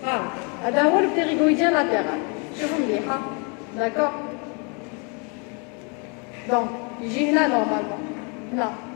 Le ptérygoïdien latéral. Je vous le dis. D'accord? Donc, il est là normalement. Là.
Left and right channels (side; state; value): right; quieter; 34.6 dB